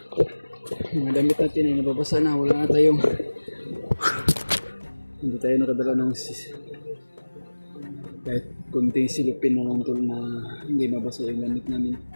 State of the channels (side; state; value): both; inverted; correlation -1.00